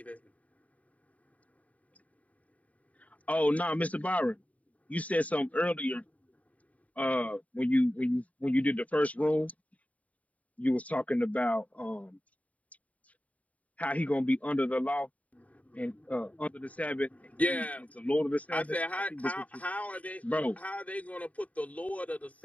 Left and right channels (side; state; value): right; late; 0.069 ms